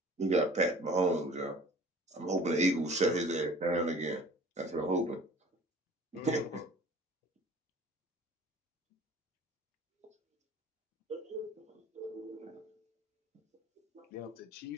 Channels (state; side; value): normal; both; correlation 0.47